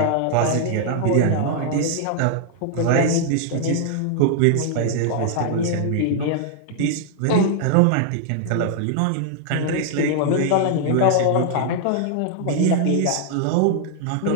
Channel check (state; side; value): different; both; correlation 0.00